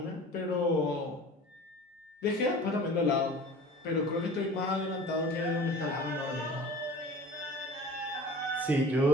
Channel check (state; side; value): normal; both; correlation 0.41